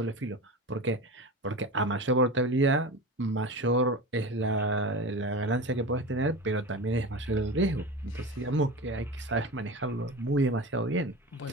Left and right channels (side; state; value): both; normal; correlation 0.28